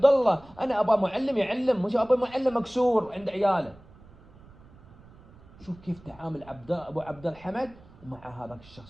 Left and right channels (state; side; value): noise; right; rumble, 23 dB below the sound